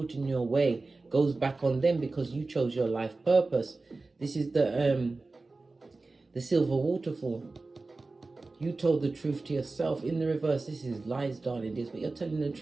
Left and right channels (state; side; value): quieter; left; 3.5 dB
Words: your way goes back on them because you chose your life purpose. This is the silver waterfall. You told the truth to yourself. In the reverse, this is lies, darling dears, but you're telling the